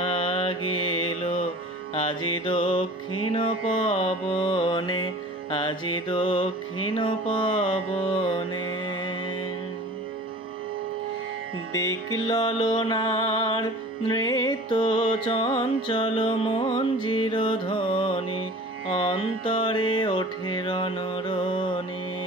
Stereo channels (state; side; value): normal; both; correlation 0.42